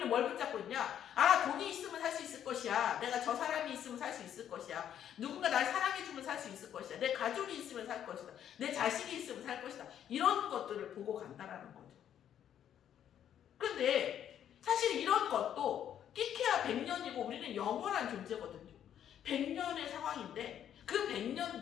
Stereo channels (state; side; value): quieter; right; 9.9 dB